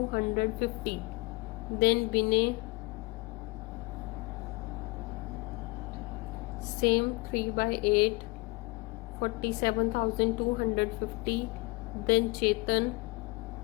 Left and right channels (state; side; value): quieter; right; 24.5 dB